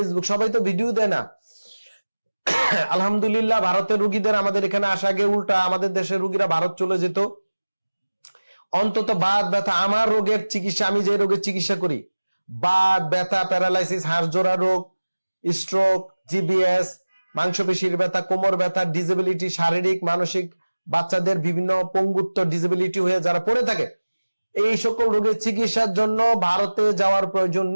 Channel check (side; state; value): both; inverted; correlation -1.00